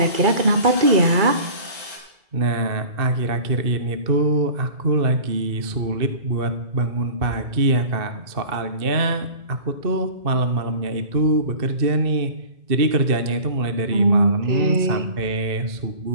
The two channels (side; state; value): left; late; 2.6 ms